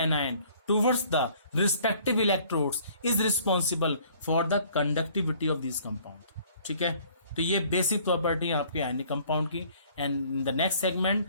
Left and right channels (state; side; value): inverted; both; correlation -0.57